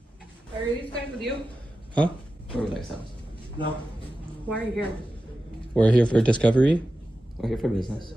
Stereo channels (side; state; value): both; normal; correlation 0.93